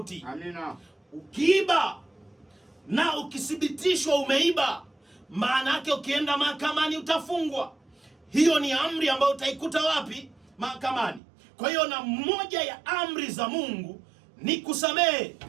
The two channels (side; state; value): left; drops out; at 11.2 s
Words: Amina. Ukiiba na ukithibitishwa umeiba, maana yake ukienda mahakamani utafungwa. Hiyo ni amri ambayo utaikuta wapi? Mahakamani. Kwa hiyo na moja ya amri za Mungu ni kusamehe.